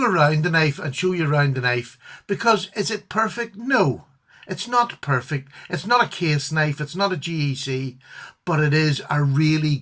around the knife and show you around the knife, because is it perfect? No. It's not perfect. It's not a case knife. It's not a GEC, but it is a really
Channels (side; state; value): both; identical; correlation 1.00